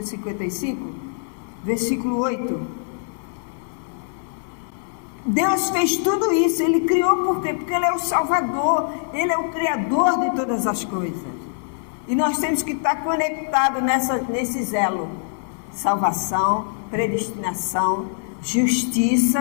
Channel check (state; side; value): silent; right; 63 dB below the other